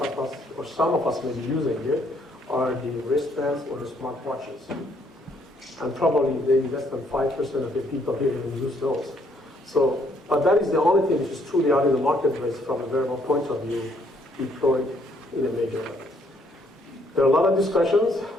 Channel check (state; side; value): normal; both; correlation 0.68